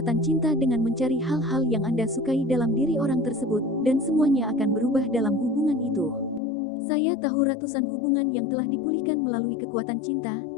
cinta dengan mencari hal-hal yang Anda sukai dalam diri orang tersebut, dan semuanya akan berubah dalam hubungan itu. Saya tahu ratusan hubungan yang telah dipulihkan melalui kekuatan cinta,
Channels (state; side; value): drops out; right; at 6.4 s